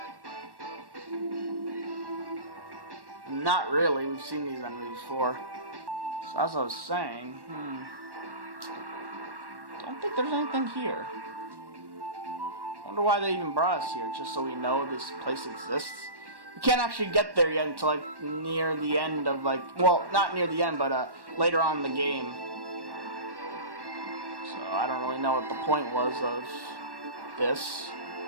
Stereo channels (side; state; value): left; late; 1.1 ms